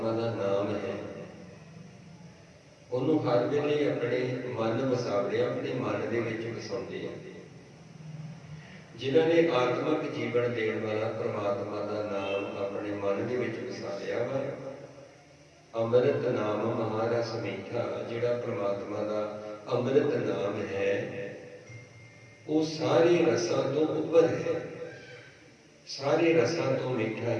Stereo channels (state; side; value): identical; both; correlation 1.00